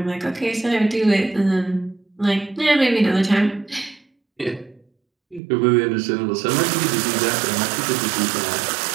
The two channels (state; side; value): drops out; left; at 5.4 s